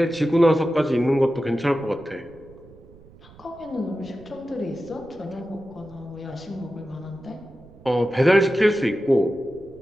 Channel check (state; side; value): noise; right; rumble, 23 dB below the sound